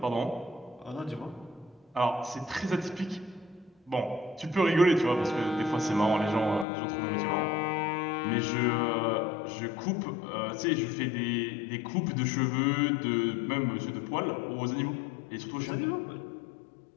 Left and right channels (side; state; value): right; drops out; at 6.7 s